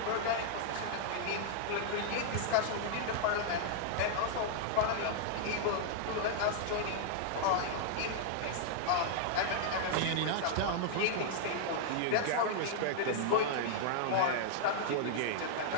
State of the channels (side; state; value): both; different; correlation -0.01